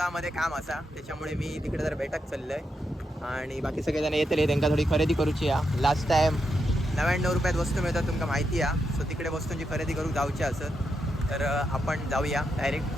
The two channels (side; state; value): both; normal; correlation 0.84